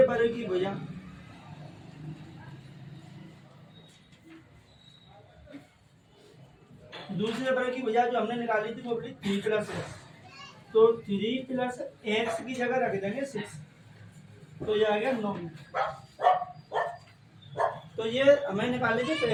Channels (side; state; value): both; identical; correlation 1.00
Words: वर्ग की भुजा, दूसरे वर्ग की भुजा जो हमने निकाली थी वो बोली 3 प्लस एक्स, तो 3 प्लस एक्स की जगह रख देंगे 6, तो ये आ गया 9 मीटर। तो ये हमें निकाली थी